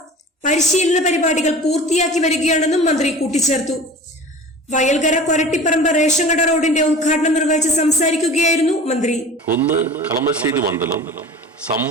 പരിശീലന പരിപാടികൾ പൂർത്തിയാക്കി വരികയാണെന്നും മന്ത്രി കൂട്ടിച്ചേർത്തു. വയൽകര കൊരട്ടിപ്പറമ്പ് റേഷൻ കട റോഡിന്റെ ഉദ്ഘാടനം നിർവഹിച്ച് സംസാരിക്കുകയായിരുന്നു മന്ത്രി. ഒന്ന്, കളമശ്ശേരി മണ്ഡലം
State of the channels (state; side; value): normal; both; correlation 0.38